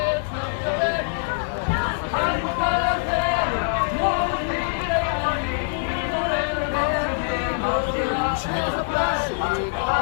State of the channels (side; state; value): right; silent; 63 dB below the other